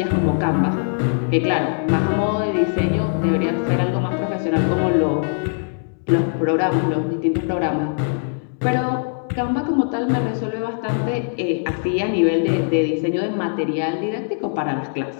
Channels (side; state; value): right; silent; 65 dB below the other